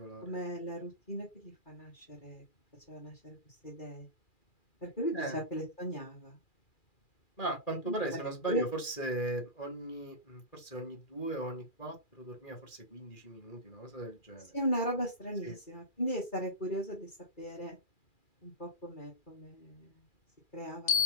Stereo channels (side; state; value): right; late; 2.4 ms